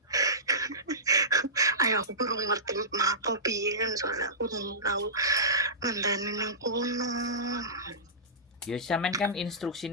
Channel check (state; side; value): normal; both; correlation -0.19